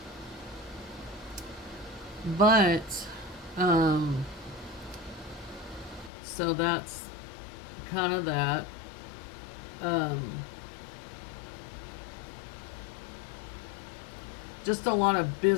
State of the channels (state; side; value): drops out; right; at 6.1 s